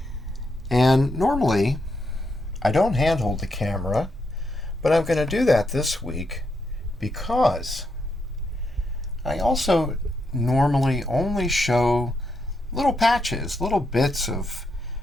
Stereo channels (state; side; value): normal; both; correlation 0.81